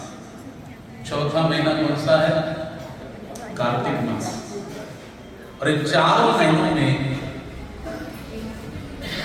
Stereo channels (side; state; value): both; identical; correlation 1.00